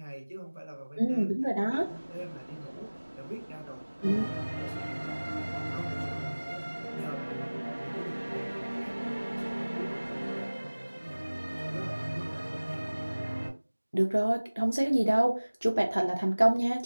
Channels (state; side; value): inverted; both; correlation -1.00